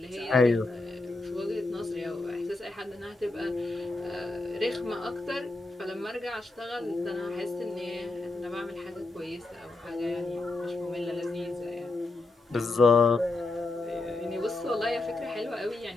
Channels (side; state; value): right; quieter; 3.1 dB